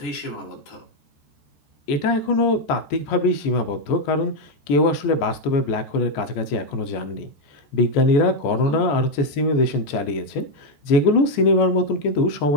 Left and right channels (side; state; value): right; late; 14 ms